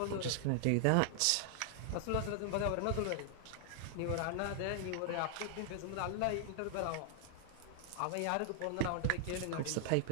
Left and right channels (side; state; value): both; different; correlation 0.00